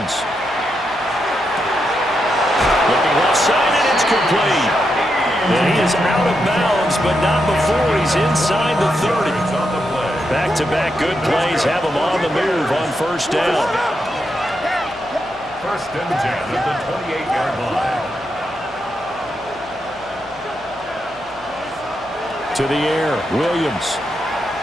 Looking left side, and it's complete. And he is out of bounds, but not before he's inside the 30. Back-to-back good plays have him on the move on first down. First and 10 at the 28-yard line. To the air, Williams.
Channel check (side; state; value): left; noise; hum, 24 dB below the sound